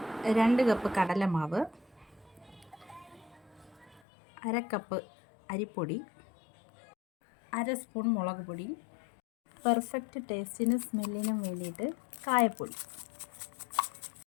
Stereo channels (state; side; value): drops out; right; at 4.0 s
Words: 2 കപ്പ് കടലമാവ്, 1/2 കപ്പ് അരിപ്പൊടി, 1/2 സ്പൂൺ മുളക് പൊടി, പെർഫെക്റ്റ് ടേസ്റ്റിനും സ്മെല്ലിനും വേണ്ടിയിട്ട് കായപ്പൊടി,